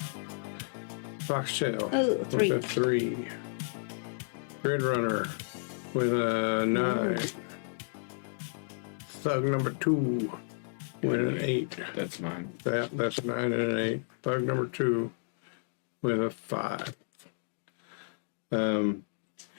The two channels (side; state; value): right; silent; digital silence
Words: Foxtail. Oh, 3. With a 3. Gridrunner with a 9. Thug number 2 with an 8. That's mine. That's a 9 and an 8. Thug number 2 with a 5.